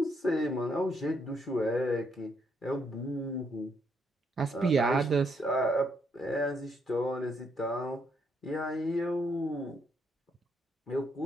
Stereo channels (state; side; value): normal; both; correlation 0.74